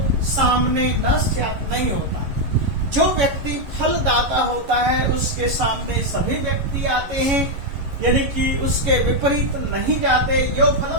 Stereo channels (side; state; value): left; late; 11 ms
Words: सामने, न स्यात्, नहीं होता। जो व्यक्ति फलदाता होता है उसके सामने सभी व्यक्ति आते हैं, यानी कि उसके विपरीत नहीं जाते। यो